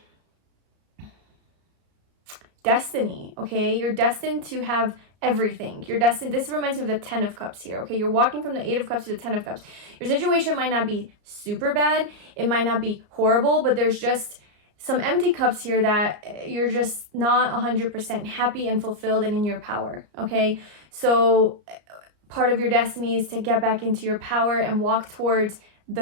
destiny, okay? You're destined to have everything. You're destined. This reminds me of the 10 of Cups here, okay? You're walking from the 8 of Cups to the 10 of Cups. Your situation might not be super bad. It might not be horrible, but there's just some empty cups here that you're just not 100% happy and fulfilled and in your power, okay? So part of your destiny is to get back into your power and walk towards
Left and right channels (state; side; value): late; left; 33 ms